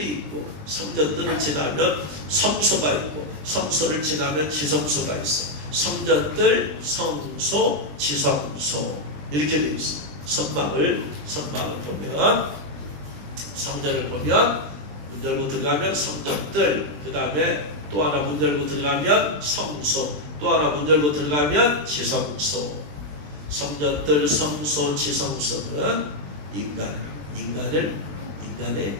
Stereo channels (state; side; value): late; left; 20 ms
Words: 있고 성전들을 지나면 성소가 있고 성소를 지나면 지성소가 있어. 성전들, 성소, 지성소 이렇게 되어 있어. 성막을 보면 성전을 보면 문 열고 들어가면 성전들, 그 다음에 또 하나 문 열고 들어가면 성소, 또 하나 문 열고 들어가면 지성소. 성전들, 성소, 지성소는 인간을 인간에